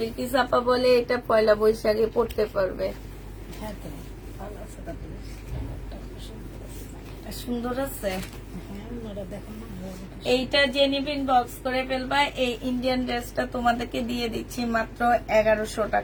আপা বলে এটা পয়লা বৈশাখে পড়তে পারবে। হ্যাঁ তো ভালো আছে, তারপরে জামাটা সুন্দর আছে। সুন্দর আছে। হ্যাঁ, ওনারা দেখুন না, ভালো আছে। এইটা যে নিবেন বক্স করে ফেলবা। এই ইন্ডিয়ান ড্রেসটা তোমাদেরকে দিয়ে দিচ্ছি মাত্র 1100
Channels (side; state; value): both; identical; correlation 1.00